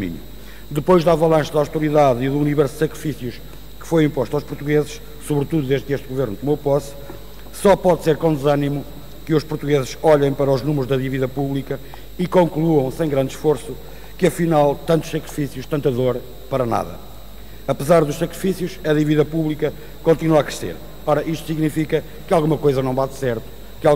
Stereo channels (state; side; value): identical; both; correlation 1.00